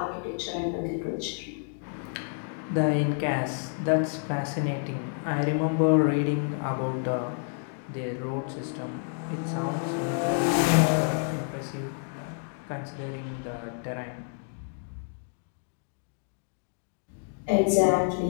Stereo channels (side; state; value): right; silent; 56 dB below the other